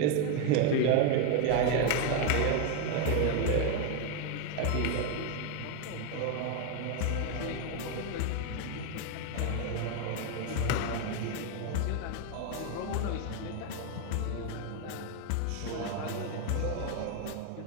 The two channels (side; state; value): both; different; correlation 0.01